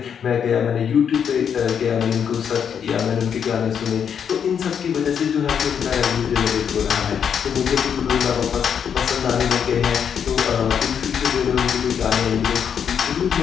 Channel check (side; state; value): right; quieter; 7.7 dB